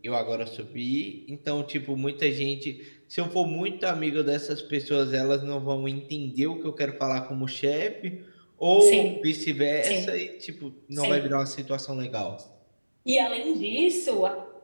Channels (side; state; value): both; inverted; correlation -1.00